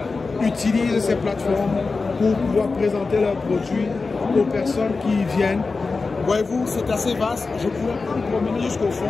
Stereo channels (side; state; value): right; quieter; 4.1 dB